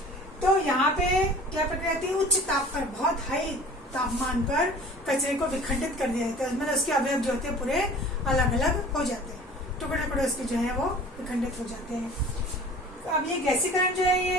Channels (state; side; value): normal; both; correlation 0.44